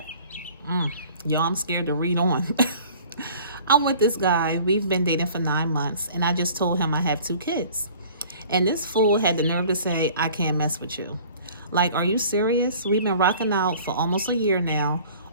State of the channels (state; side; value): inverted; both; correlation -0.49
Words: Y'all, I'm scared to read on. I'm with this guy. We've been dating for 9 months, and I just told him I have 2 kids. And this fool had the nerve to say, I can't mess with you. Like, are you serious? We've been rocking out for almost a year now.